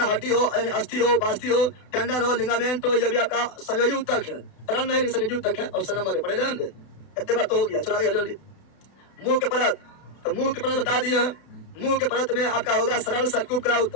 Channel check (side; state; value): right; late; 32 ms